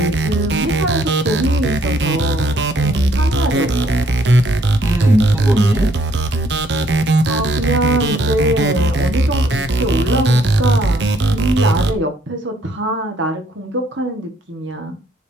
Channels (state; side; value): normal; both; correlation 0.67